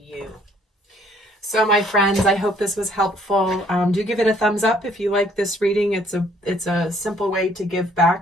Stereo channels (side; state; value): both; normal; correlation 0.63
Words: So my friends, I hope this was helpful. Do give it a thumbs up if you like this reading. It's a simple way to give